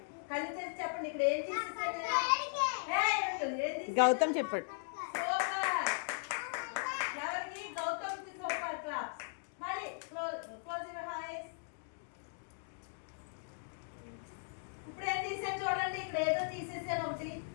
కళ్ళు తెరిచి చెప్పండి. ఇక్కడ ఏం తీసేసాను? గౌతమ్ చెప్పాడు. ఎవరికి? గౌతమ్ కి సూపర్ క్లాస్. మళ్ళీ క్లోజ్ యువర్ ఐస్. ఇప్పుడు ఏం తీసాను చూడండి. ఇక్కడ ఏదో తీసేసాను ఒకటి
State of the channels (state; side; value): silent; right; digital silence